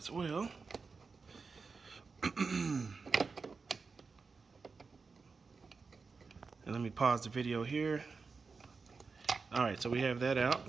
well. And let me pause the video here. All right, so we have that out.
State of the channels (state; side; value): quieter; left; 4.6 dB